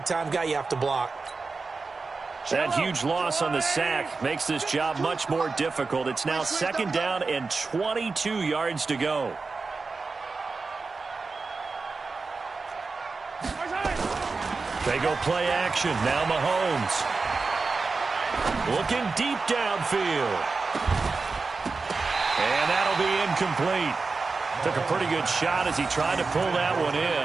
guy you have to block. That huge loss on the sack makes this job much more difficult. It's now second down and 22 yards to go. They go play action. Now Mahomes. Looking deep downfield. And that'll be incomplete. Took a pretty good shot as he tried to pull that one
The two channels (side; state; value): left; quieter; 4.2 dB